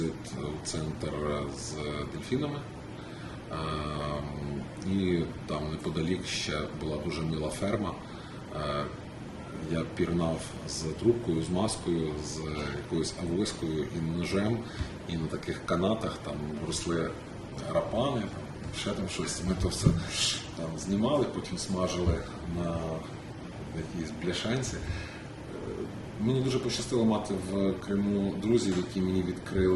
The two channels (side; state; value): both; identical; correlation 1.00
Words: у центр з дельфінами. І там неподалік ще була дуже мила ферма. Я пірнав з трубкою, з маскою, з якоюсь авоською і ножем, і на таких канатах там росли рапани, ще там щось. Ми то все там знімали, потім смажили на якійсь бляшанці. Мені дуже пощастило мати в Криму друзів, які мені